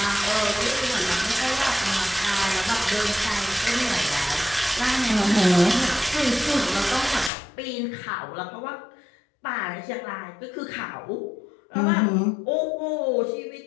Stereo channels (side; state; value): right; drops out; at 7.3 s